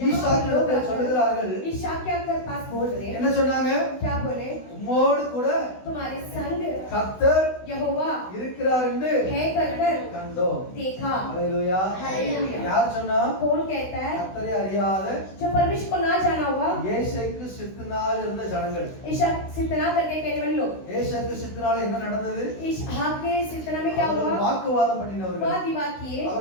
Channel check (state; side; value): late; right; 16 ms